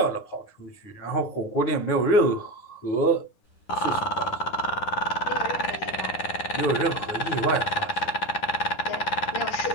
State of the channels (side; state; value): right; late; 9.9 ms